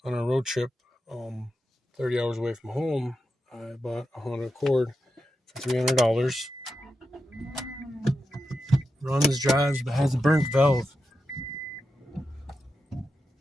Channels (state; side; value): normal; both; correlation 0.89